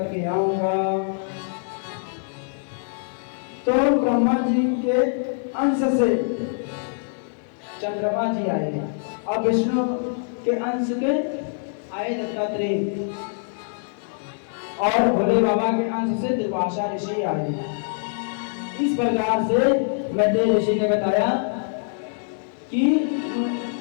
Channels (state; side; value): silent; right; digital silence